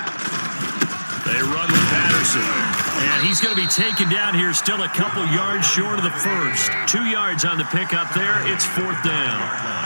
They run with Patterson. And he's going to be taken down here, still a couple yards short of the first. 2 yards on the pickup there. It's 4th down.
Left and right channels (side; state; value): both; inverted; correlation -1.00